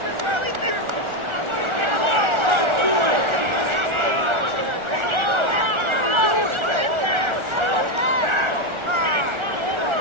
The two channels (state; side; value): late; left; 1.4 ms